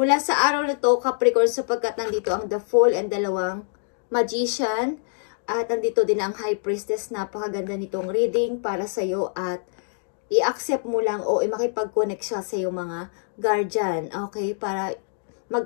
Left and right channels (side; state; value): right; silent; digital silence